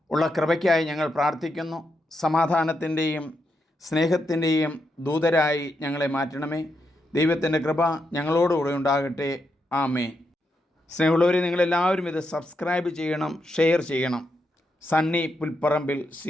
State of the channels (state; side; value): normal; both; correlation 0.83